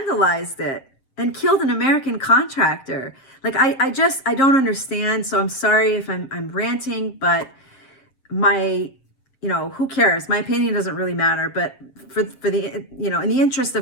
it and killed an American contractor? I don't understand. So I'm sorry if I'm ranting, but who cares? My opinion doesn't really matter. But for the, in the interest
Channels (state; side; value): late; right; 7.5 ms